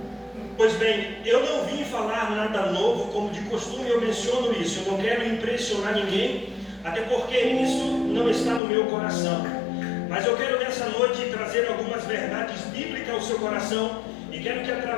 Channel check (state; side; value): drops out; right; at 8.6 s